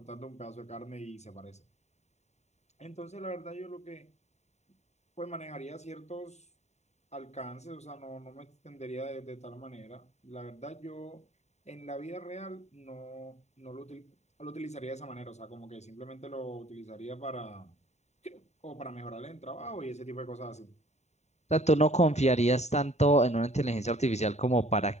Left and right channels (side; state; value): right; late; 0.32 ms